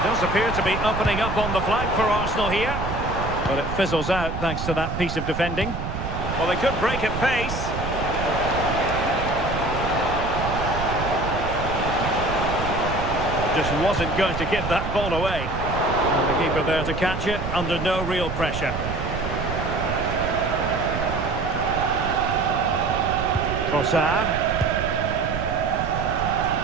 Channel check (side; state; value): right; noise; rumble, 5 dB below the sound